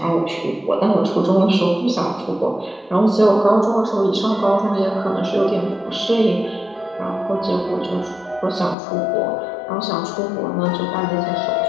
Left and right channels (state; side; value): drops out; right; at 8.8 s